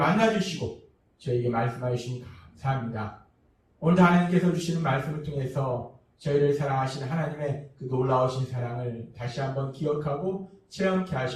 저희에게 말씀해 주시니 감사합니다. 오늘도 하나님께서 주시는 말씀을 통해서 저희를 사랑하신 하나님의 그 놀라우신 사랑을 다시 한번 기억하고 체험케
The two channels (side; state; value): both; identical; correlation 1.00